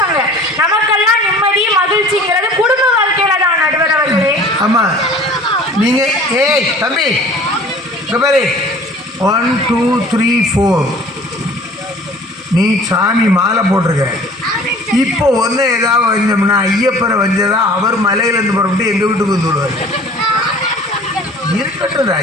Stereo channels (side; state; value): both; normal; correlation 0.47